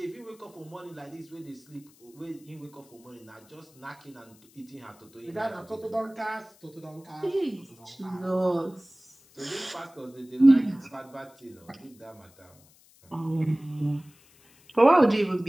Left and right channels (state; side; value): noise; left; hiss, 28 dB below the sound